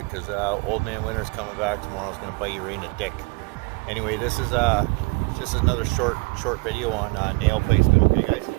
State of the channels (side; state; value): left; quieter; 28.9 dB